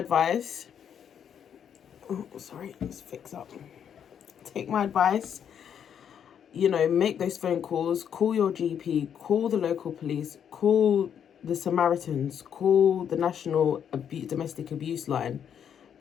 Oh, sorry, let's fix up. Take my advice. You know, make those phone calls, call your GP, call the local police, call the Samaritans, call the National Domestic Abuse Line,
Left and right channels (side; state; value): right; quieter; 8.5 dB